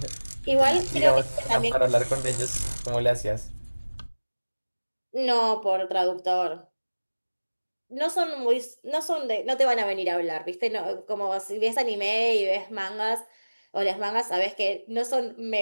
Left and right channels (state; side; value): inverted; both; correlation -1.00